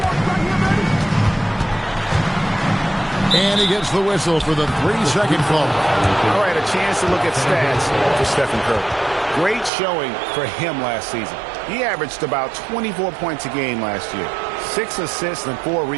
And he gets the whistle for the 3-second call. All right, a chance to look at stats for Stephen Curry. Great showing for him last season. He averaged about 24 points a game last year, 6 assists and 4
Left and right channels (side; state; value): left; drops out; at 9.7 s